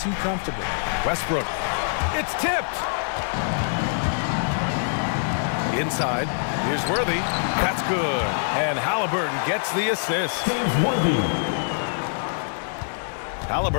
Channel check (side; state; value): right; silent; 62 dB below the other